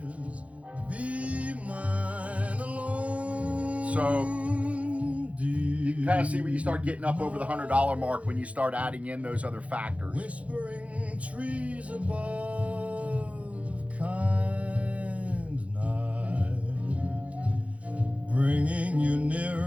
So you can kind of see where you start getting up over the $100 mark when you start adding in those other factors. Whispering trees above, kind night, bringing you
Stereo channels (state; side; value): late; left; 0.065 ms